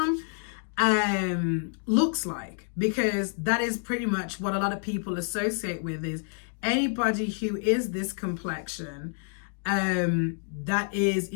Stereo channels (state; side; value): silent; right; 56 dB below the other